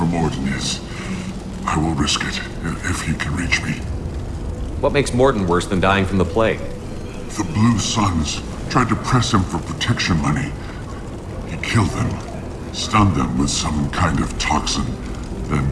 Morton is, I will risk it if he can reach me. What makes Morton worse than dying from the plague? The Blue Suns tried to press him for protection money. He killed them, stunned them with some kind of toxin, then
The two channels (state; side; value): identical; both; correlation 1.00